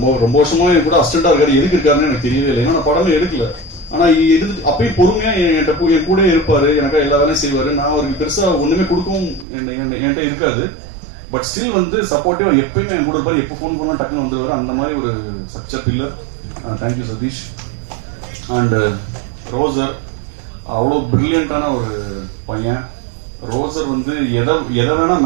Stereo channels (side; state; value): left; drops out; at 9.5 s